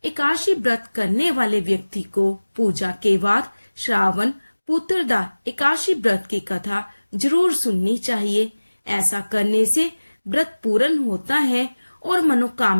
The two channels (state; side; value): inverted; both; correlation -1.00